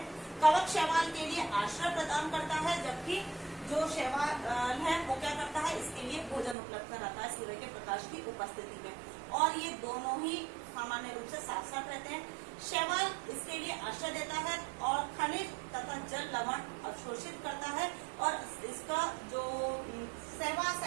कवक शैवाल के लिए आश्रय प्रदान करता है, जबकि जो शैवाल है वो क्या करता है, इसके लिए भोजन उपलब्ध कराता है सूर्य के प्रकाश की उपस्थिति में। और ये दोनों ही सामान्य रूप से साथ साथ रहते हैं। शैवाल इसके लिए आश्रय देता है और खनिज तथा जल लवण अवशोषित करता है। और इसका जो सहवास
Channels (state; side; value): drops out; left; at 6.6 s